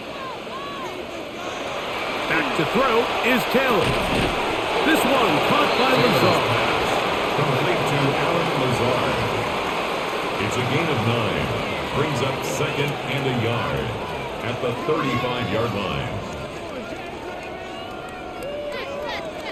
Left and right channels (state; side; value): identical; both; correlation 1.00